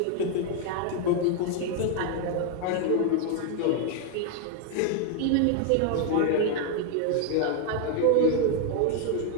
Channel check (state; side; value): different; both; correlation 0.00